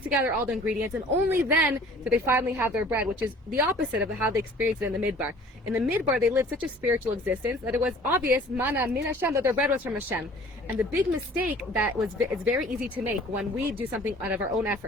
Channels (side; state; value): both; normal; correlation 0.50